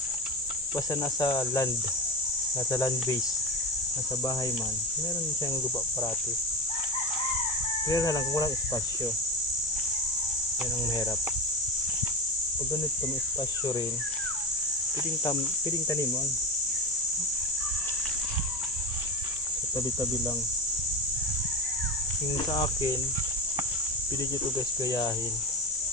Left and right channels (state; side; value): noise; left; hiss, 23 dB below the sound